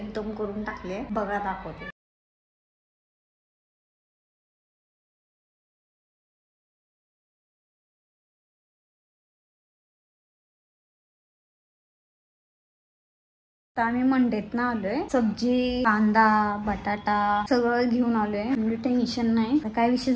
करून टाकले. बघा दाखवते. आम्ही मंडेत ना आलोय. सब्जी, कांदा, बटाटा सगळं घेऊन आलोय. म्हणजे टेन्शन नाही. काय विषय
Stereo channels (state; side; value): identical; both; correlation 1.00